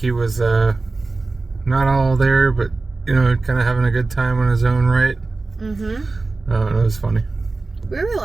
was not all there, but you know, kind of having a good time on his own right. It was funny. We were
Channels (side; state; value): left; quieter; 3.6 dB